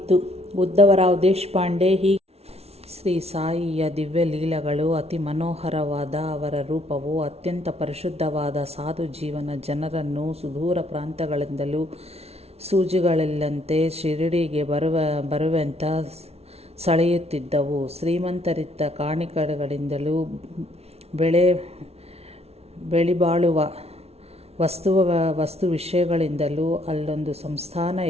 ಉದ್ದವರಾವ್ ದೇಶಪಾಂಡೆ ಹೀಗೆ ಶ್ರೀ ಸಾಯಿಯ ದಿವ್ಯ ಲೀಲೆಗಳು ಅತಿ ಮನೋಹರವಾದ. ಅವರ ರೂಪವು ಅತ್ಯಂತ ಪರಿಶುದ್ಧವಾದ ಸಾಧು ಜೀವನ. ಜನರನ್ನು ಸುದೂರ ಪ್ರಾಂತಗಳಿಂದಲೂ ಸೂಜಿಗಳಲ್ಲಂತೆ ಶಿರಡಿಗೆ ಬರುವಂತ ಸೆಳೆಯುತ್ತಿದ್ದವು. ಶ್ರೀಮಂತರಿದ್ದ ಕಾಣಿಕೆಗಳಿಂದಲೂ ಬೆಳಿಬಾಳುವ ವಸ್ತು ವಿಷಯಗಳಿಂದಲೂ ಅಲ್ಲೊಂದು ಸಂಸ್ಥಾನ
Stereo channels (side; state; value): left; late; 0.30 ms